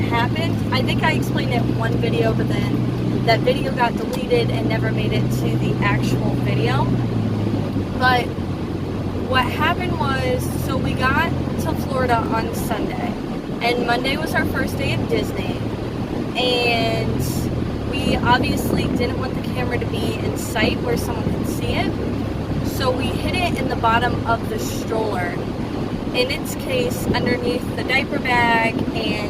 I think I explained it in one video, but then that video got deleted and never made it to the actual video. But what happened was, so we got to Florida on Sunday, and Monday was our first day at Disney, and we obviously didn't want the camera to be in sight where someone could see it, so we hid it in the bottom of the stroller. In its case, underneath the diaper bag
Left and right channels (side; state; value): both; identical; correlation 1.00